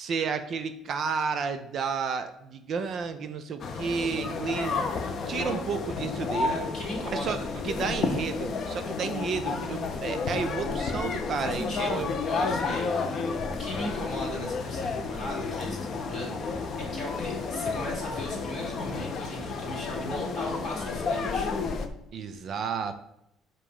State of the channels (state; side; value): normal; both; correlation 0.63